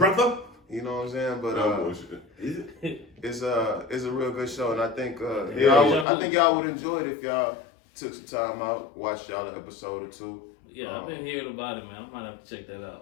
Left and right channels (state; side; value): drops out; right; at 6.1 s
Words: You know what I'm saying? But Is it? it's a real good show, and I think Yeah. I think y'all would enjoy it if y'all took some time out, watched y'all an episode or two. Yeah, I've been hearing about it, man. I might have to check that